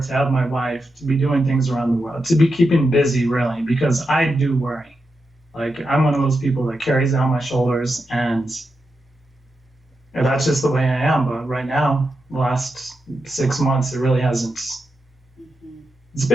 to have my wife, to be doing things around the world, to be keeping busy, really, because I do worry. Like, I'm one of those people that carries it on my shoulders, and that's just the way I am. But right now, the last 6 months, it really hasn't.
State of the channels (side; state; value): both; normal; correlation 0.87